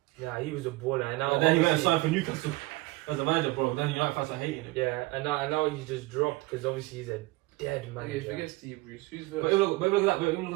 Yeah, he was a baller. And now And then he went and obviously- signed for Newcastle as a manager, bro. Then United fans are hating him. Yeah, and now he's just dropped because obviously he's a dead Okay, manager. forget Steve Bruce. Who's But first? look at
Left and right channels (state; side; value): quieter; left; 21.3 dB